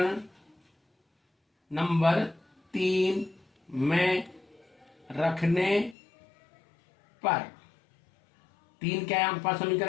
नंबर 3 में रखने पर, 3 क्या है आपके पास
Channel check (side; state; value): right; drops out; at 6.0 s